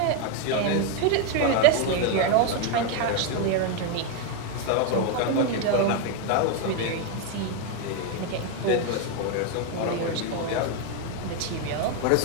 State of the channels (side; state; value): both; different; correlation 0.01